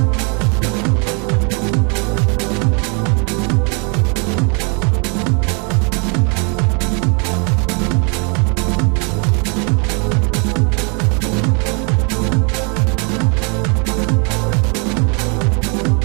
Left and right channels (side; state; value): left; quieter; 35.6 dB